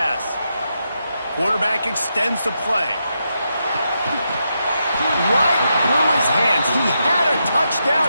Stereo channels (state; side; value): inverted; both; correlation -0.84